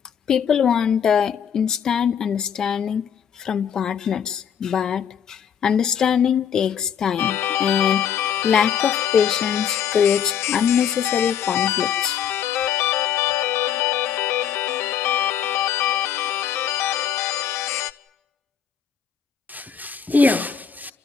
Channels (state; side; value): quieter; right; 8.2 dB